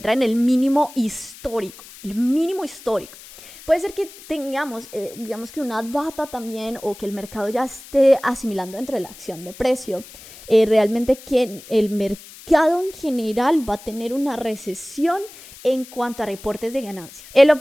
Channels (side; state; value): left; noise; hiss, 19 dB below the sound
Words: en el mínimo histórico, el mínimo histórico. Puede ser que tengamos, digamos que una data también o que el mercado ya esté asimilando dentro de la acción de precio, realmente que el mercado en general va a tener una recesión en cuanto a reportes de ganancias. El